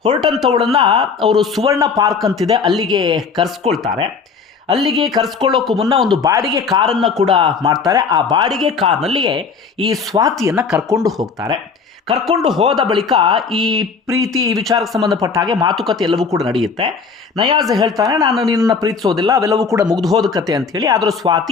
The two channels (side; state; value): right; quieter; 5.3 dB